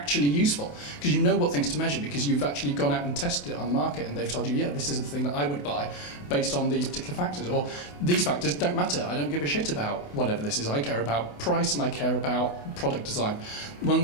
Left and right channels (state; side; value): late; right; 28 ms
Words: useful, because you know what things to measure, because you've actually gone out and tested it on the market and they've told you, yeah, this is the thing that I would buy based on these particular factors, or these factors don't matter. I don't give a shit about whatever this is. I care about price and I care about product design. One